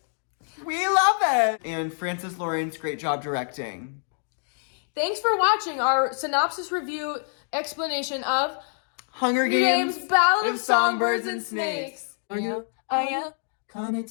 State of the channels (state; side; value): silent; right; digital silence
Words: we love it! And Francis Lawrence, great job directing. Thanks for watching our synopsis review explanation of Hunger Games, Ballad of Songbirds Songbirds and Snakes. Are you Are you? coming